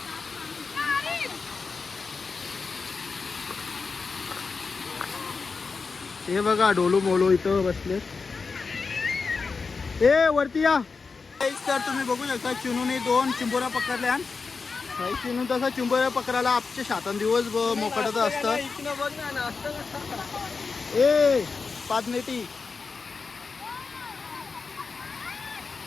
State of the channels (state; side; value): quieter; right; 4.7 dB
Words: हे बघा डोलू मोलू इथं बसले. ए वरती या. तर तुम्ही बघू शकता चिनूने 2 चिंबोरा पकडल्या. चिनू तसा चिंबोऱ्या पकडायला आमच्या शातान दिवस मोकटच असतं. ए 5 नेटी